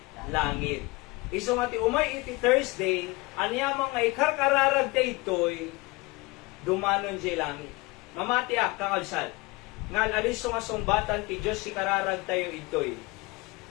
langit. Iso nga ti umay iti Thursday, anyamang nga ikarkararag te itoy, dumanon jay langit. Mamati kakalsal. Ngal alis nga sumbatan ti Diyos si kararag tayo itoy.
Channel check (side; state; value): right; quieter; 23.9 dB